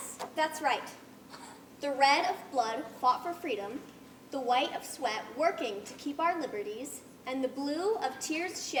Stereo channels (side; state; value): both; identical; correlation 1.00